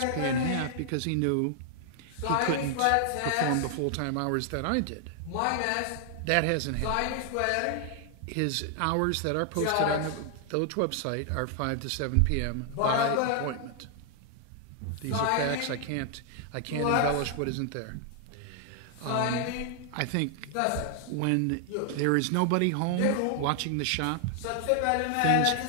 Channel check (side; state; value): both; different; correlation 0.00